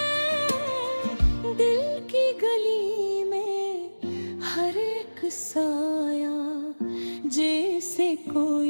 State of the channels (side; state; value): both; inverted; correlation -1.00